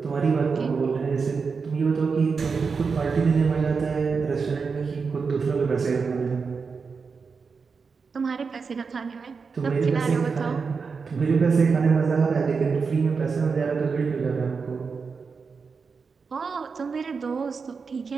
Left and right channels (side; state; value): left; quieter; 5.2 dB